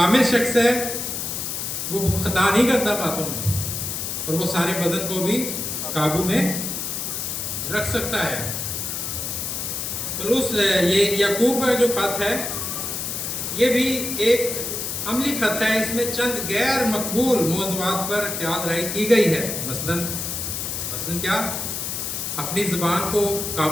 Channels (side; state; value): left; noise; hiss, 4 dB below the sound